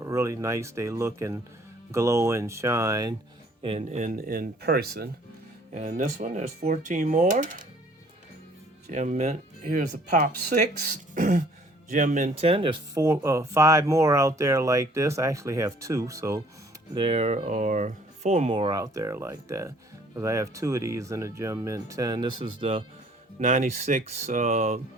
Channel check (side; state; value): both; normal; correlation 0.58